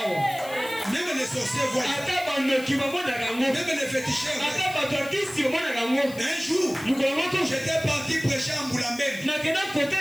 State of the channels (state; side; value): noise; left; hiss, 17 dB below the sound